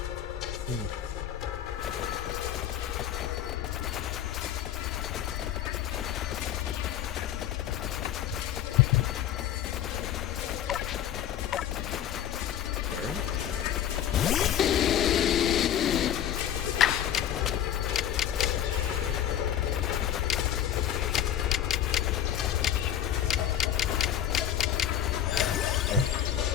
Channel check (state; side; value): quieter; right; 10.6 dB